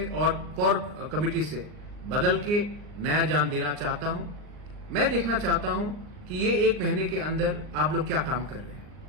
और कोर कमेटी से बदल के नया जान देना चाहता हूं। मैं देखना चाहता हूं कि ये एक महीने के अंदर आप लोग क्या काम कर रहे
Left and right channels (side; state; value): left; late; 39 ms